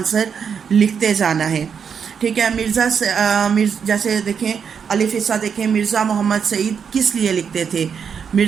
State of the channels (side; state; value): left; quieter; 6.9 dB